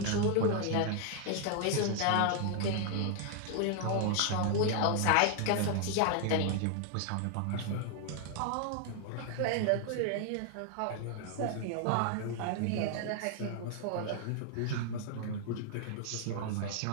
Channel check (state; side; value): different; both; correlation 0.00